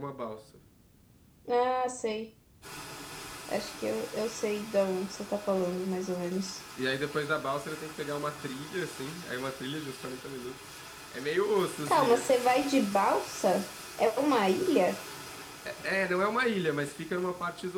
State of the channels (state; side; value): identical; both; correlation 1.00